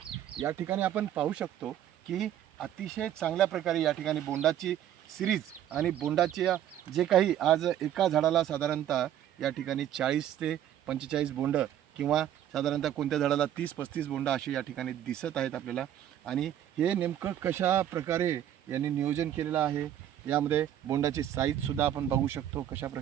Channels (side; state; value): left; quieter; 11.1 dB